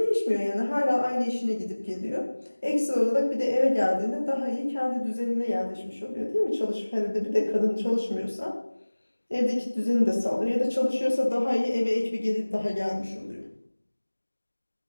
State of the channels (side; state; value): both; inverted; correlation -1.00